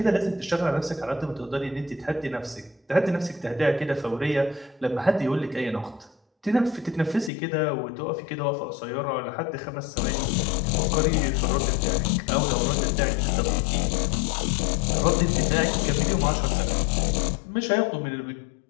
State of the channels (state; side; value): drops out; right; at 7.3 s